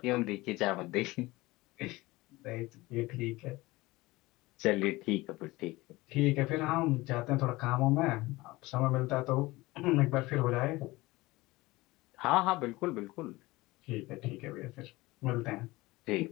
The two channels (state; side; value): quieter; right; 20.6 dB